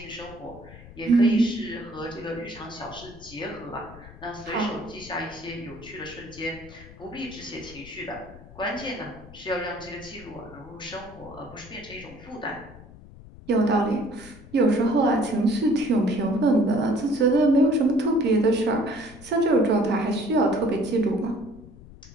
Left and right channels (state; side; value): noise; left; rumble, 19 dB below the sound